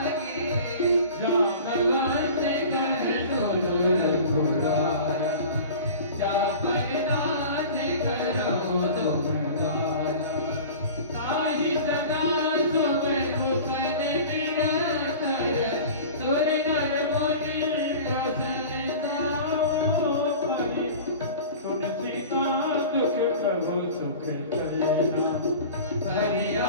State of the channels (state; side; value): inverted; both; correlation -0.38